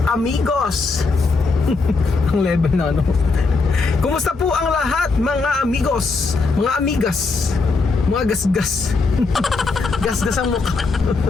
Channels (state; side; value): quieter; right; 4.0 dB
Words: amigos! Ang level na ano. Kumusta po ang lahat, mga amigos, mga amigas, mga gasgas? Gasgas ang mukha.